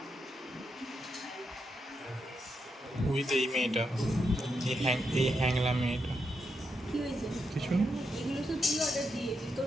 with এই মেয়েটা, এই হ্যাংলা মেয়েটা। কি হয়েছে? কিছু না, এগুলো তো তুই অর্ডার দিয়েছিস,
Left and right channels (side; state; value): both; normal; correlation 0.83